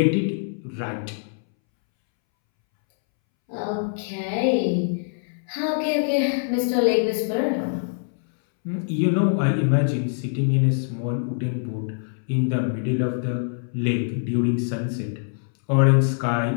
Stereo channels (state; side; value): silent; right; 63 dB below the other